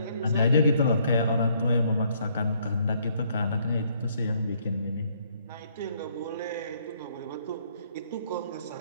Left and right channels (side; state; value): both; inverted; correlation -0.68